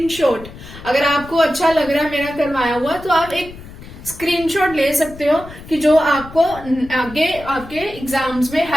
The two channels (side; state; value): left; noise; rumble, 16 dB below the sound